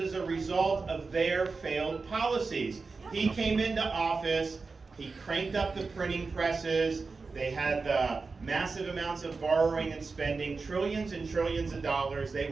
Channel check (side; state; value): left; quieter; 4.3 dB